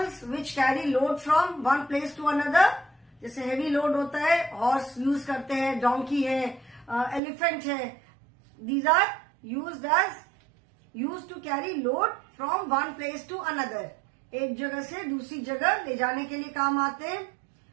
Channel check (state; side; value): drops out; left; at 7.2 s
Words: which carry load from one place to another. जैसे हेवी लोड होता है, हॉर्स यूज करते हैं, डोंकी है, एलिफेंट है. These are use to carry load from one place to another. एक जगह से दूसरी जगह ले जाने के लिए काम आते हैं.